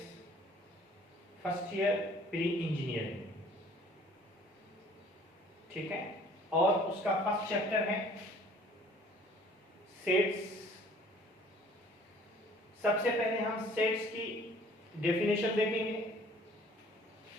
first year pre-engineering. ठीक है, और उसका first chapter है sets. सबसे पहले हम सेट्स की डेफिनेशन देखेंगे।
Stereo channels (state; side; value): normal; both; correlation 0.54